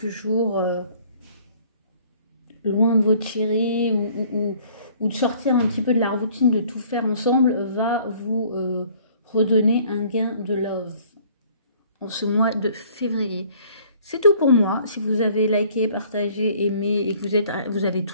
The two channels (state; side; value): inverted; both; correlation -0.56